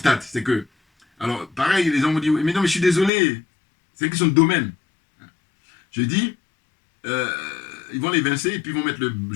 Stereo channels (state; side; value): drops out; right; at 3.1 s